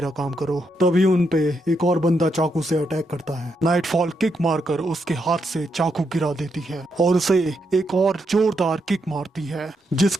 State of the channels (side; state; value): both; normal; correlation 0.81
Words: काम करो। तभी उन पे एक और बंदा चाकू से अटैक करता है। नाइटफॉल किक मारकर उसके हाथ से चाकू गिरा देती है और उसे एक और जोरदार किक मारती है,